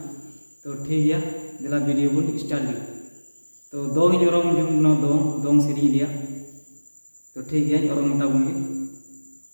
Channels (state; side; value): inverted; both; correlation -1.00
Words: तो ठीक है दिला वीडियो बन स्टार्ट ली तो दो ही ओरोम जुमना दोंग सीरी दिया तो ठीक है ओरोम मोटा बुंगी